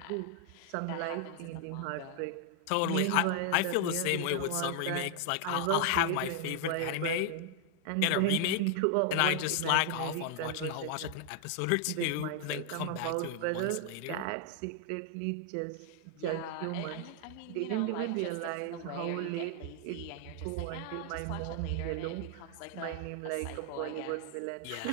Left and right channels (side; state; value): both; different; correlation 0.00